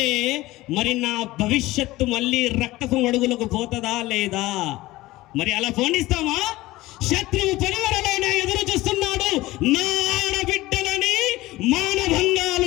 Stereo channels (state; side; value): quieter; right; 18.3 dB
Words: మరి నా భవిష్యత్తు మళ్ళీ రక్తపు అడుగులకు పోతుందా లేదా? మరి అలా పోనిస్తామా? శత్రువు పరివరలోనే ఎదురు చూస్తున్నాడు నా ఆడబిడ్డలని